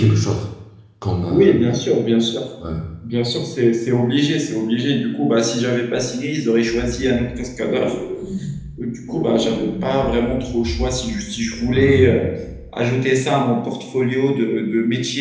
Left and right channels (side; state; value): both; identical; correlation 1.00